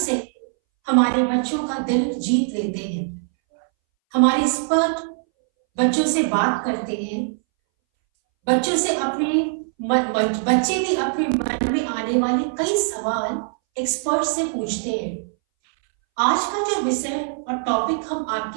हमारे बच्चों का दिल जीत लेते हैं। हमारे एक्सपर्ट बच्चों से बात करते हैं, बच्चों से बच्चे भी अपने मन में आने वाले कई सवाल एक्सपर्ट से पूछते हैं। आज का जो विषय और टॉपिक हम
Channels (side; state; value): left; silent; 62 dB below the other